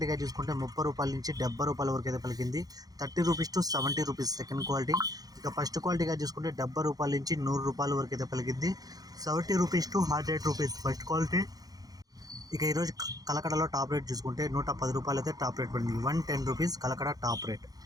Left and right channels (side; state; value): left; late; 0.18 ms